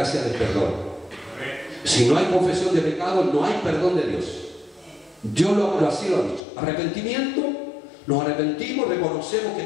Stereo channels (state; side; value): drops out; right; at 6.4 s